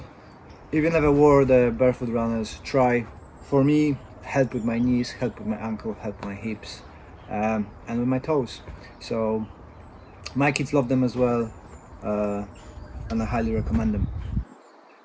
if you never wore the barefoot runners, try. For me, help with my knees, help with my ankle, help with my hips, and with my toes. So my kids love them as well, and I highly recommend them.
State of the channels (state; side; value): identical; both; correlation 1.00